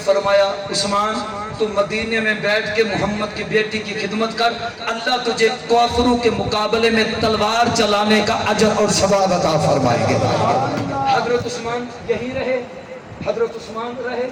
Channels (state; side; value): identical; both; correlation 1.00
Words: فرمایا عثمان تو مدینے میں بیٹھ کے محمد کی بیٹی کی خدمت کر، اللہ تجھے کافروں کے مقابلے میں تلوار چلانے کا اجر اور ثواب عطا فرمائے گے۔ حضرت عثمان یہی رہے، حضرت عثمان رہے،